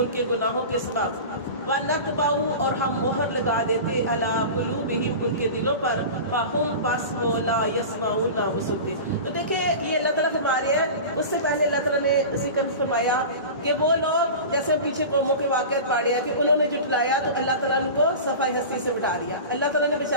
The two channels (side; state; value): both; inverted; correlation -0.32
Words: کے گناہوں کے سبب وَنَتْبَعُ اور ہم مہر لگا دیتے عَلَىٰ قُلُوبِهِمْ ان کے دلوں پر فَهُمْ بس وہ لا يَسْمَعُونَ نہ وہ سنتے۔ تو دیکھیں یہ اللہ تعالیٰ فرما رہے ہیں، اس سے پہلے اللہ تعالیٰ نے ذکر فرمایا کہ وہ لوگ جیسے پیچھے قوموں کے واقعات پڑھے ہیں کہ انہوں نے جھٹلایا تو اللہ تعالیٰ نے ان کو صفحہ ہستی سے اٹھا دیا۔ اللہ تعالیٰ نے